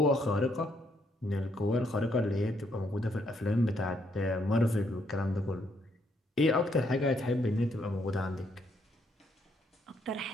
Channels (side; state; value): both; normal; correlation 0.73